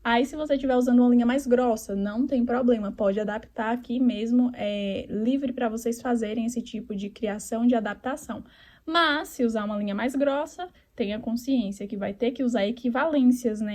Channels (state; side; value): identical; both; correlation 1.00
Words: Aí, se você estiver usando uma linha mais grossa, não tem problema, pode adaptar aqui mesmo, livre para vocês fazerem esse tipo de criação de adaptação. Mas, se usar uma linha mais grossa, tenha consciência que vai ter que usar equivalências,